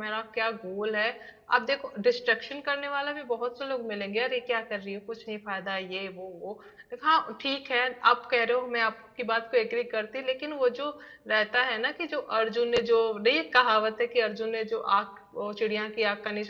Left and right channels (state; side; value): identical; both; correlation 1.00